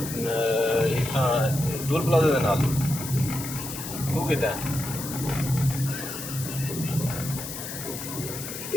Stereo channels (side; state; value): left; noise; hiss, 8 dB below the sound